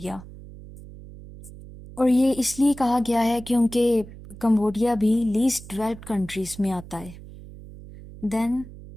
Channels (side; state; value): right; noise; hum, 16 dB below the sound